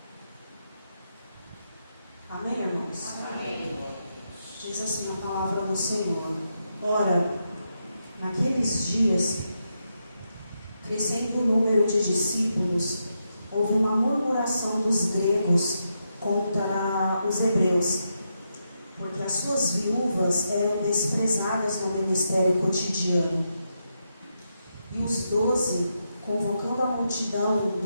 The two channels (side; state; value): both; inverted; correlation -0.84